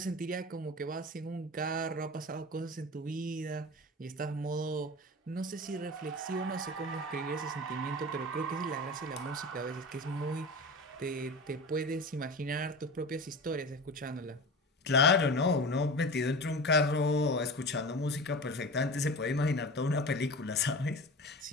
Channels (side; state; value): both; normal; correlation 0.32